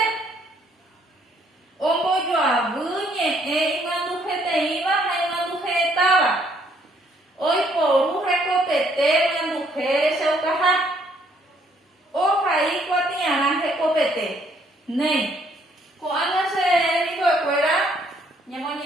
ombo yo abuñe imandu te iba imandu estaba hoy por recopete imandu se ucaja o ahí cuatiana recopete ne cuando se dijo fuera ñemo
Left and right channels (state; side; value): normal; both; correlation 0.67